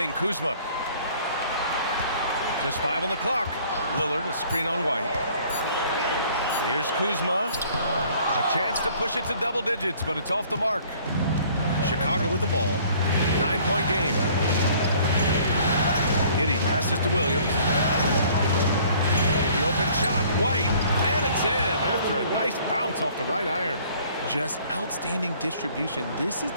Kuzma. Just 5 on the clock. Lillard, a screen on White. Here's Kuzma. A chance to push it to double digits, but it's off the mark. Chicago with the ball. 9-point game. Giddey passes to Williams. The open shot, White, and it's in after a nice bounce off the right iron. Just outstanding distribution. This is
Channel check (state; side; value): inverted; both; correlation -0.55